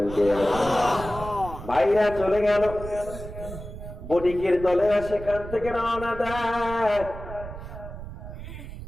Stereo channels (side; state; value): right; noise; rumble, 11 dB below the sound